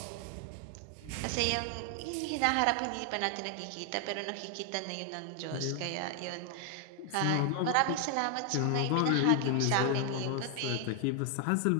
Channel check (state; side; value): different; both; correlation 0.00